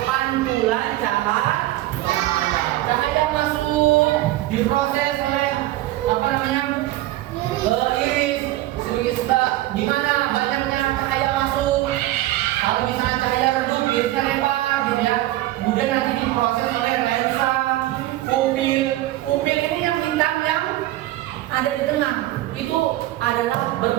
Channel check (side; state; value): left; quieter; 16.0 dB